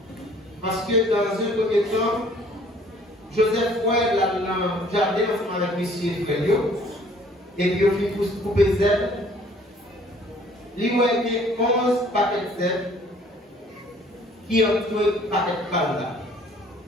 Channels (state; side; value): normal; both; correlation 0.57